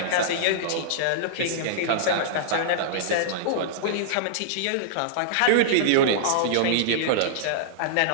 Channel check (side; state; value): both; different; correlation -0.02